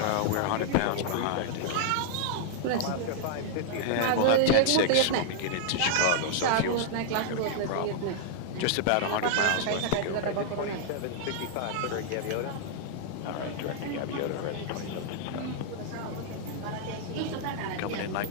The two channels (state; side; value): different; both; correlation -0.01